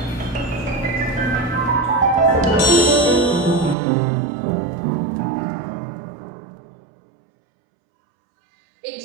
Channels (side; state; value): left; drops out; at 3.8 s